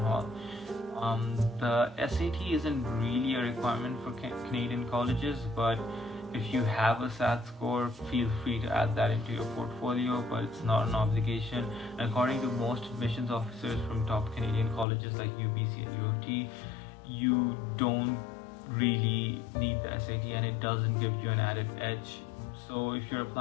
The SAT isn't really a requirement for Canadian colleges, but if you have a SAT score, feel free to add that into your portfolio, but it's not an obligation. And according to most admissions officers from top Canadian colleges like UBC and UOT, you don't really need the SAT, and it doesn't give you an added edge. So if you're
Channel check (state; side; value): drops out; right; at 14.9 s